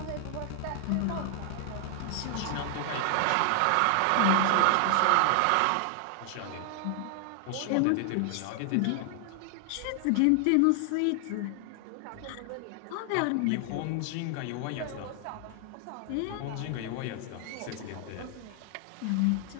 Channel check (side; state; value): both; different; correlation 0.00